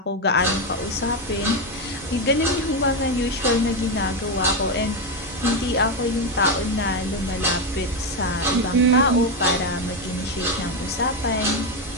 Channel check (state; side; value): normal; both; correlation 0.09